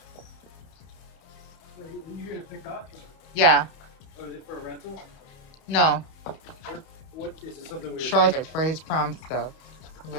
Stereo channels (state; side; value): late; right; 31 ms